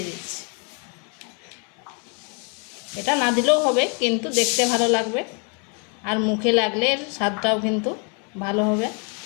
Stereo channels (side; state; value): right; quieter; 37.1 dB